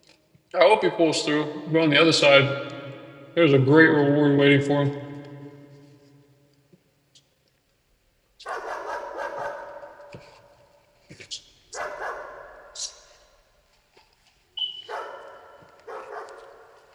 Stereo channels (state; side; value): identical; both; correlation 1.00